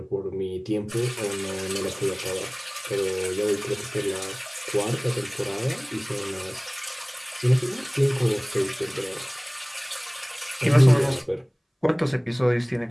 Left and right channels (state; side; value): identical; both; correlation 1.00